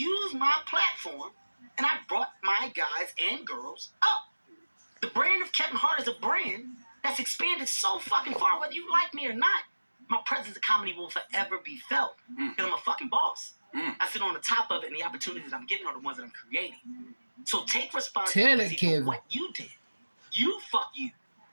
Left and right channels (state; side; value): inverted; both; correlation -1.00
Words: my platform and I brought my guys and girls up. The brand of Kevin Hart is a brand that's expanded so fucking far, whether you like me or not. My presence in comedy will forever be felt because I'm a fucking boss. I sit on the top of it, and the opportunities I'm giving are the ones that I'm creating. So take responsibility for what you did. You fuck you.